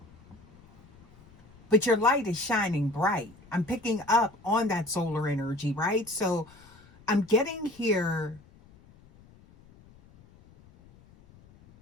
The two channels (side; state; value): left; noise; rumble, 26 dB below the sound